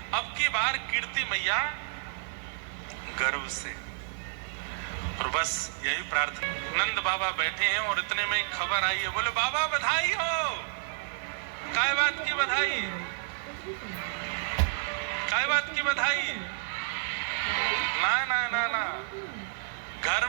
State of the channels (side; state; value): left; silent; 56 dB below the other